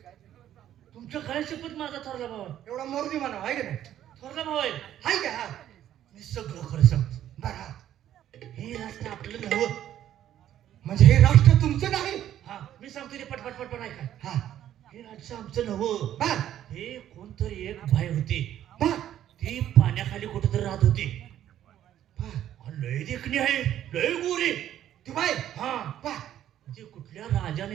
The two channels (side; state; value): left; quieter; 11.5 dB